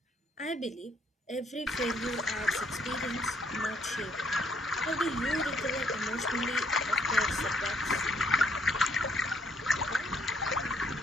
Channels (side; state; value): both; normal; correlation 0.68